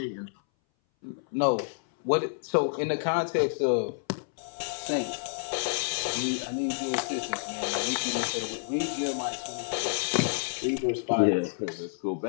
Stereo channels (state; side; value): silent; right; 58 dB below the other